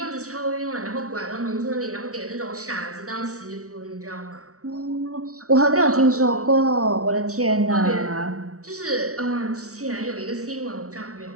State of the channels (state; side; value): late; left; 0.65 ms